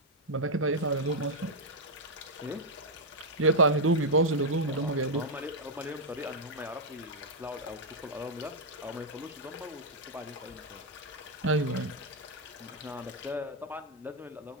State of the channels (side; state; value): both; normal; correlation -0.03